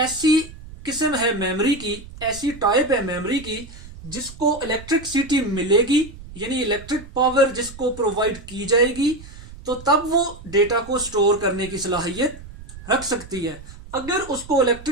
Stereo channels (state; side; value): noise; right; rumble, 16 dB below the sound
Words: किस्म है मेमोरी की, ऐसी टाइप है मेमोरी की जिसको इलेक्ट्रिसिटी मिलेगी, यानी इलेक्ट्रिक पावर जिसको प्रोवाइड की जाएगी, तो तब वो डेटा को स्टोर करने की सलाहियत रख सकती है। अगर उसको